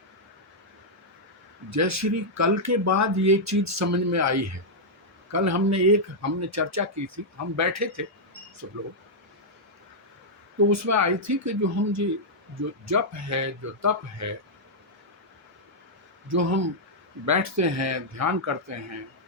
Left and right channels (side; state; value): both; normal; correlation -0.06